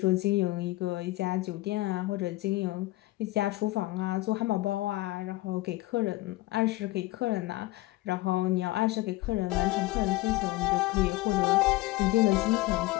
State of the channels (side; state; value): right; quieter; 18.9 dB